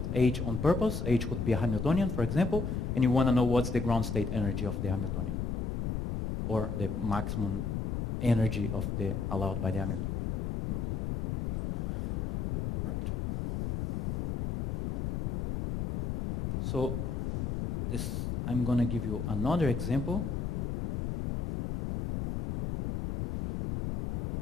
H on purpose, H could be a Hamiltonian, for example, and you want to know what's the ground state energy of the Hamiltonian, or the maximum energy of the allowed by the Hamiltonian. Okay? Right. So this, I'm going to give you another example.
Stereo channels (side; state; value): left; noise; rumble, 2 dB below the sound